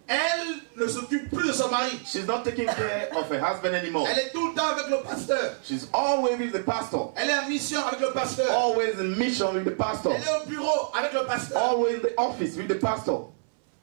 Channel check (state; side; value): silent; left; 60 dB below the other